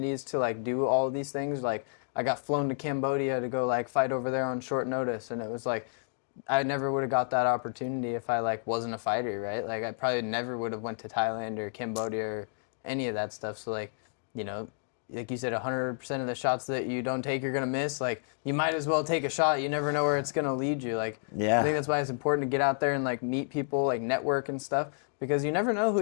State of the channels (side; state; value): right; silent; digital silence